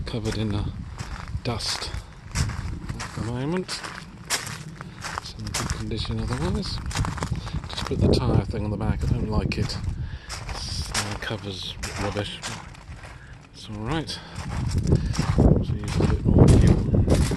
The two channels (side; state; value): both; identical; correlation 1.00